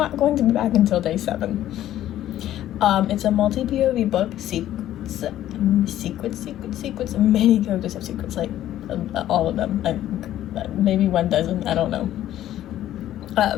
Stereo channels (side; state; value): right; quieter; 12.7 dB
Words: going to be back until day 7. It's a multi-POV book. Secrets. Many characters have secrets, like all of them. Maybe one doesn't, I don't know.